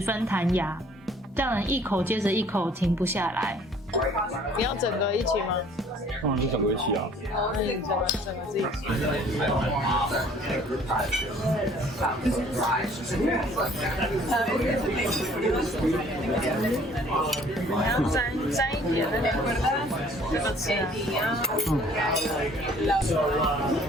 弹牙，让人一口接着一口停不下来。你要整个一起吗？当然是整个一起啊。哦，那你整个自己起。你要沾一点那个这个吃啊。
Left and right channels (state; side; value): normal; both; correlation 0.56